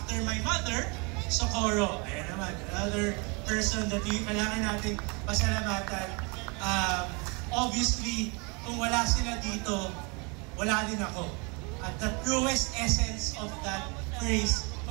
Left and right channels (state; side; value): quieter; left; 30.9 dB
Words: my mother, Socorro. Ayan naman, another person that kailangan natin pasalamatan. Obviously, kung wala sila dito, wala din ako. At the truest essence of that phrase,